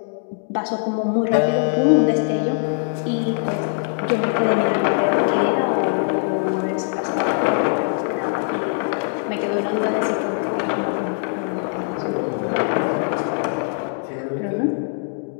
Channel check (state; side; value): silent; right; digital silence